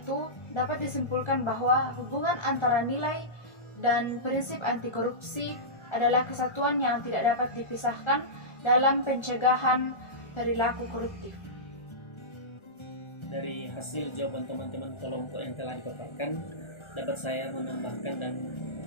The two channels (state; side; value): late; right; 1.3 ms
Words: dapat disimpulkan bahwa hubungan antara nilai dan prinsip anti korupsi adalah kesatuan yang tidak dapat dipisahkan dalam pencegahan perilaku koruptif. Dari hasil jawaban teman-teman kelompok yang telah dipaparkan, dapat saya menambahkan dan